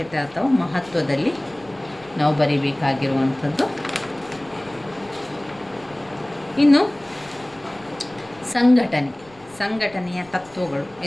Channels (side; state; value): left; noise; rumble, 26 dB below the sound